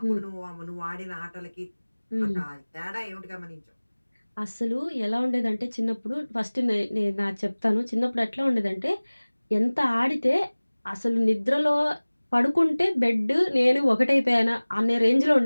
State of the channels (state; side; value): inverted; both; correlation -1.00